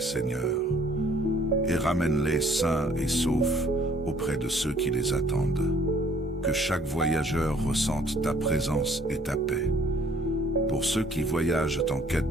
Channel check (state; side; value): normal; both; correlation 0.59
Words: Seigneur, et ramène-les sains et saufs auprès de ceux qui les attendent. Que chaque voyageur ressente ta présence et ta paix. Pour ceux qui voyagent en quête